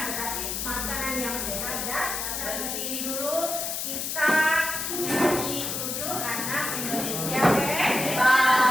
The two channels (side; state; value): left; noise; hiss, 3 dB below the sound